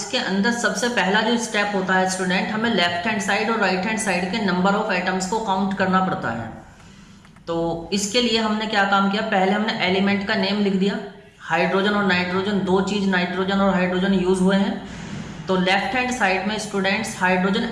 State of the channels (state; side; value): identical; both; correlation 1.00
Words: अंदर सबसे पहला जो स्टेप होता है स्टूडेंट, हमें लेफ्ट हैंड साइड और राइट हैंड साइड के नंबर ऑफ एटम्स को काउंट करना पड़ता है। तो इसके लिए हमने क्या काम किया, पहले हमने एलिमेंट का नेम लिख दिया। हाइड्रोजन और नाइट्रोजन, दो चीज नाइट्रोजन और हाइड्रोजन यूज हुए हैं। तो लेफ्ट हैंड साइड में स्टूडेंट्स हाइड्रोजन